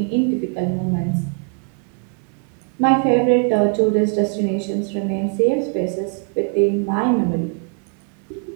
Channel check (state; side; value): quieter; left; 39.3 dB